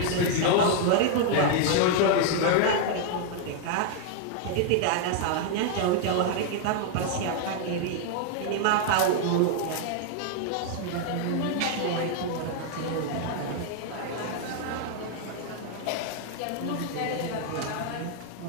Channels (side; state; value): both; different; correlation 0.00